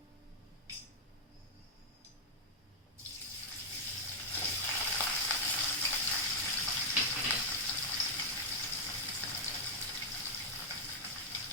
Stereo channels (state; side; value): normal; both; correlation -0.03